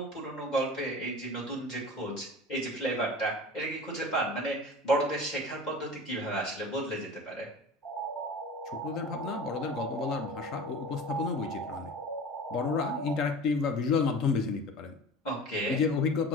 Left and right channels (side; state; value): both; normal; correlation 0.36